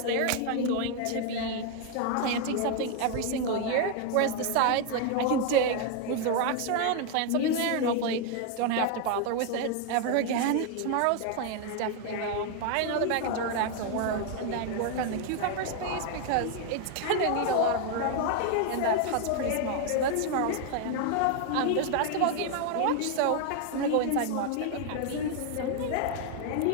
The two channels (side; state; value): both; different; correlation 0.01